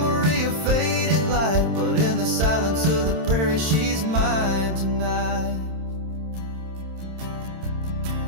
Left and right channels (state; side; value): late; left; 27 ms